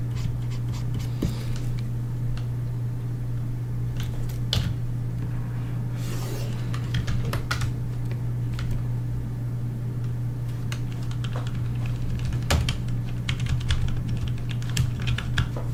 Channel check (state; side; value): identical; both; correlation 1.00